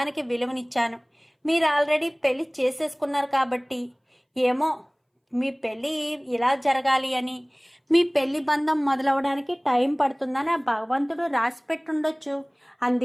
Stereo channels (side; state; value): both; identical; correlation 1.00